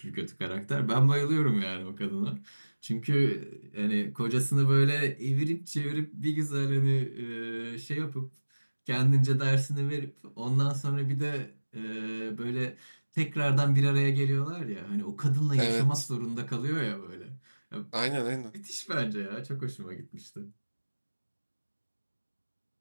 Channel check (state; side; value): inverted; both; correlation -1.00